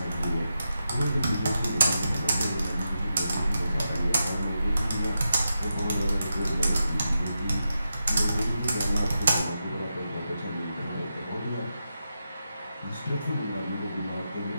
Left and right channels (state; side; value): inverted; both; correlation -0.87